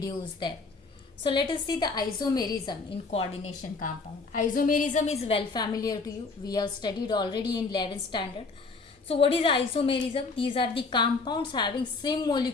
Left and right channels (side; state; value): right; quieter; 4.1 dB